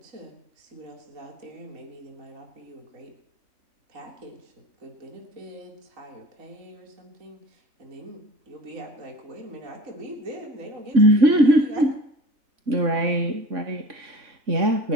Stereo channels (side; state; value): left; late; 3.6 ms